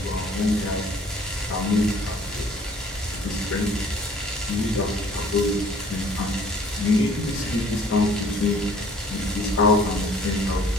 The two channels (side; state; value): both; normal; correlation 0.55